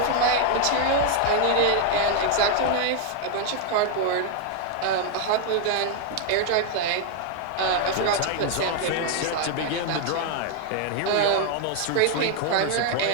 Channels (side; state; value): both; different; correlation 0.00